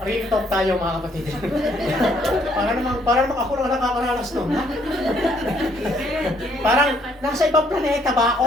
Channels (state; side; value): normal; both; correlation 0.67